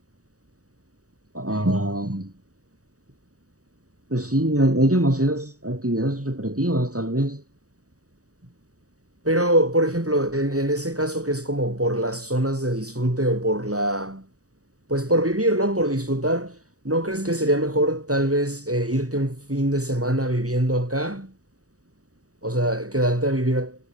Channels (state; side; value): late; left; 0.66 ms